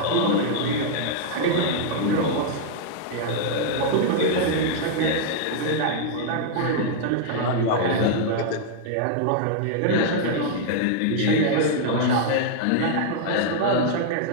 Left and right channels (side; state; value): both; different; correlation -0.01